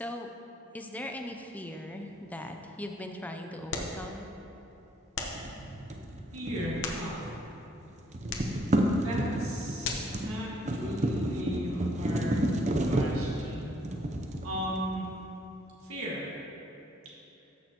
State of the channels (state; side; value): normal; both; correlation 0.67